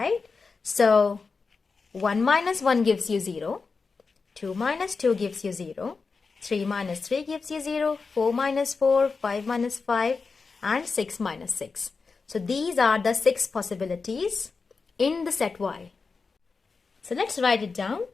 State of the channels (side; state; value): right; quieter; 4.6 dB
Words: So 1 minus 1 gives you 0, 2 minus 2 gives you 0, 3 minus 3 gives you 0, 4 minus 4, 5 minus 5, and 6 minus 6. So these are the 6 possibilities in the set Y. So let's write it down.